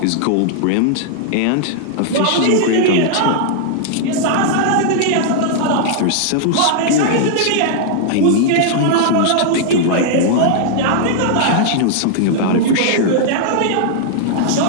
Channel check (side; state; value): both; different; correlation -0.01